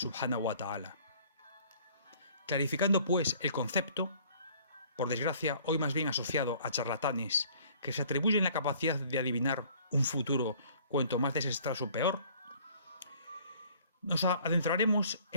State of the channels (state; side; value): inverted; both; correlation -0.56